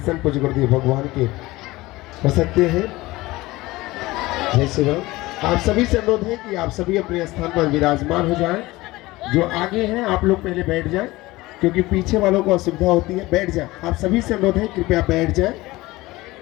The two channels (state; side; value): quieter; right; 19.6 dB